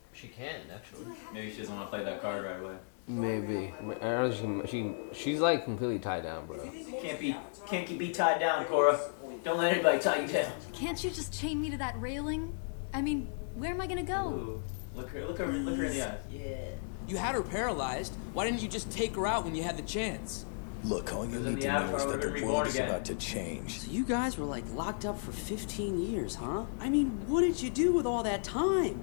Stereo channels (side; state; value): right; silent; digital silence